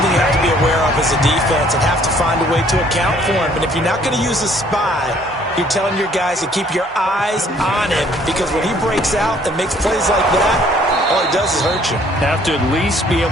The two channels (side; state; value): both; normal; correlation 0.60